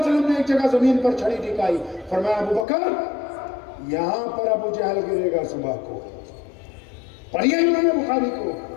نے ایک جگہ زمین پر چھڑی ٹکائی. فرمایا ابو بکر یہاں پر ابو جہل گرے گا صبح کو. پڑھیے امام بخاری کو.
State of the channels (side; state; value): right; drops out; at 2.7 s